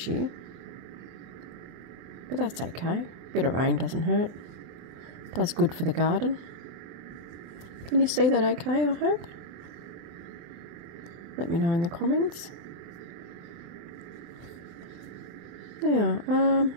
year, but that's okay. A bit of rain doesn't hurt. Does good for the garden. Can you see that okay, I hope? Let me know in the comments. Now,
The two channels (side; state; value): left; late; 24 ms